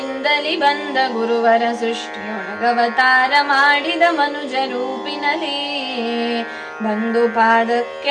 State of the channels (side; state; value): both; identical; correlation 1.00